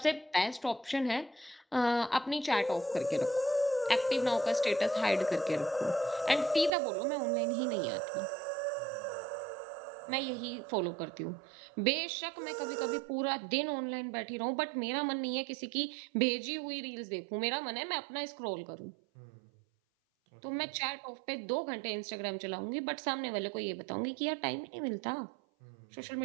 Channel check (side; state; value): left; drops out; at 6.7 s